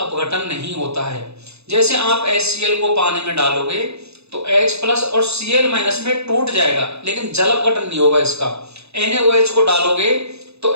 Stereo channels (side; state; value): left; late; 0.79 ms